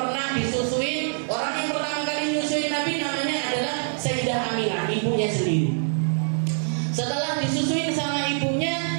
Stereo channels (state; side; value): silent; left; digital silence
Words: disusuin. Orang yang pertama kali menyusui Nabi namanya adalah Sayyidah Aminah, ibunya sendiri. Setelah disusuin sama